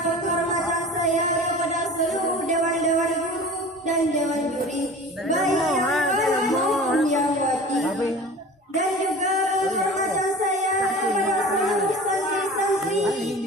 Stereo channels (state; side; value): normal; both; correlation 0.38